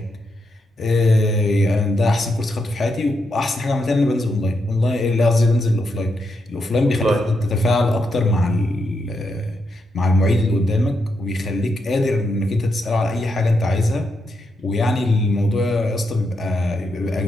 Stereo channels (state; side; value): normal; both; correlation 0.82